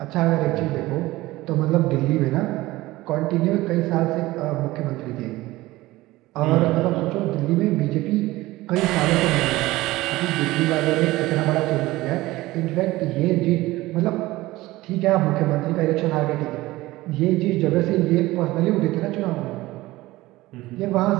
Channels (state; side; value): quieter; left; 18.5 dB